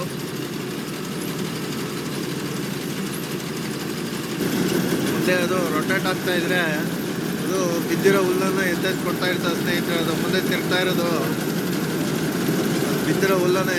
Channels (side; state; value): both; identical; correlation 1.00